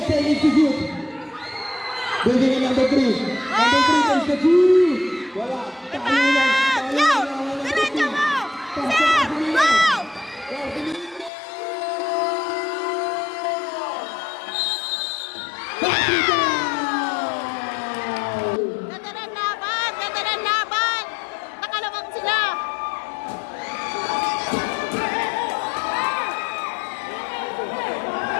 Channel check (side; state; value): right; drops out; at 11.3 s